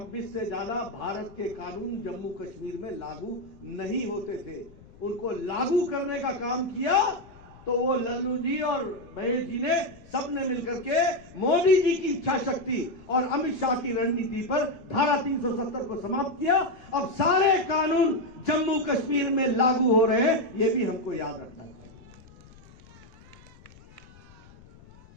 से ज्यादा भारत के कानून जम्मू कश्मीर में लागू नहीं होते थे। उनको लागू करने का काम किया तो वो लल्लू जी और महेश जी ने सबने मिलकर के मोदी जी की इच्छा शक्ति और अमित शाह की रणनीति पर धारा 370 को समाप्त किया। अब सारे कानून जम्मू कश्मीर में लागू हो रहे हैं, ये भी हमको याद रखना चाहिए।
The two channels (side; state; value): left; noise; rumble, 23 dB below the sound